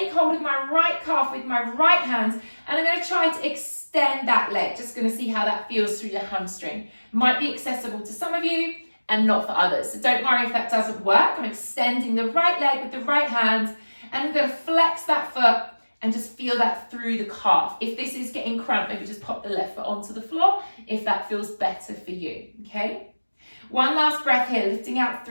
hold of my right calf with my right hand. And I'm going to try to extend that leg. Just going to see how that feels through your hamstring. Might be accessible to some of you and not for others. So don't worry if that doesn't work. I'm extending the right leg with the right hand. And I'm going to flex that foot and just feel that through the calf. If this is getting cramped, maybe just pop the left foot onto the floor if that feels better for you, okay? One last breath here, lifting out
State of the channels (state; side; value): inverted; both; correlation -1.00